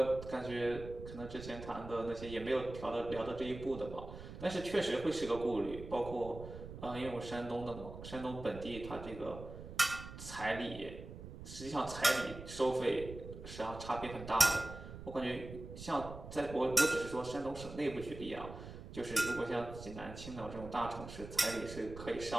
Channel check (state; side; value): noise; right; rumble, 12 dB below the sound